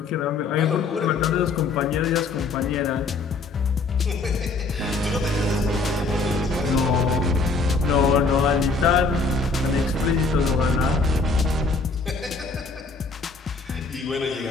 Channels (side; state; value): right; quieter; 3.8 dB